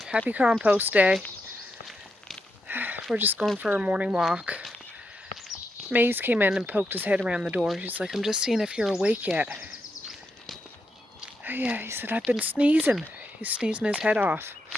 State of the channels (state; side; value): normal; both; correlation 0.83